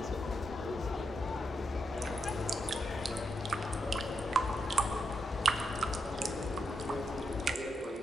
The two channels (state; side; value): normal; both; correlation 0.83